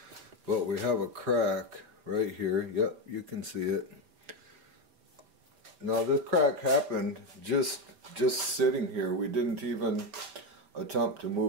But we have a crack right here. Yep, you can see it. Now this crack happened just sitting here. We didn't even attempt to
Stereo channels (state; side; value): late; left; 4.6 ms